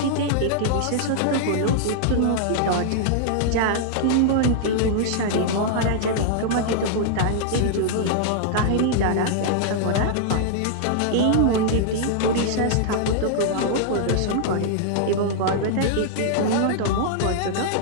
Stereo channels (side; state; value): both; different; correlation -0.01